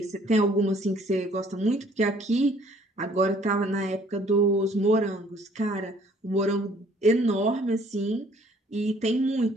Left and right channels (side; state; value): both; normal; correlation 0.59